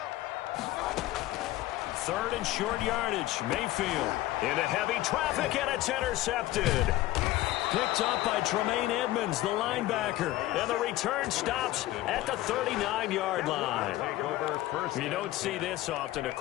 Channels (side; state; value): right; quieter; 16.2 dB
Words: Third and short yardage. Mayfield into heavy traffic, and it's intercepted. Picked up by Tremaine Edmonds, the linebacker. And the return stops at the 39-yard line. You don't see this often. A